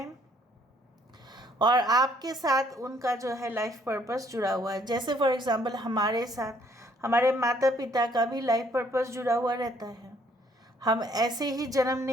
और आपके साथ उनका जो है लाइफ पर्पस जुड़ा हुआ है। जैसे फॉर एग्जांपल हमारे साथ हमारे माता पिता का भी लाइफ पर्पस जुड़ा हुआ रहता है। हम ऐसे ही जन्म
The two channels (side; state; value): both; normal; correlation 0.65